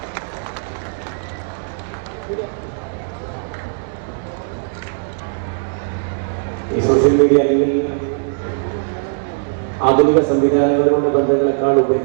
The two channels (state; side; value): silent; left; 67 dB below the other